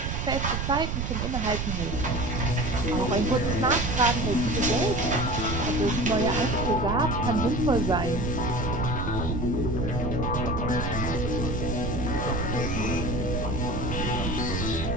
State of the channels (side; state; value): right; noise; rumble, 1 dB below the sound